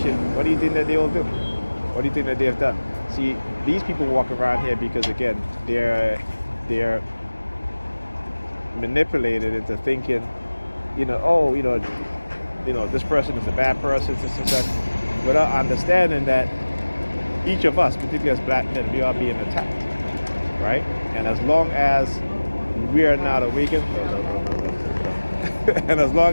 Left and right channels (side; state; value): both; inverted; correlation -1.00